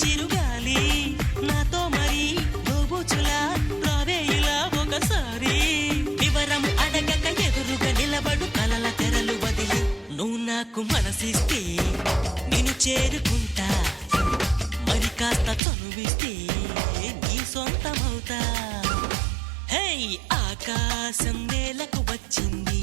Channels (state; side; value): drops out; left; at 15.6 s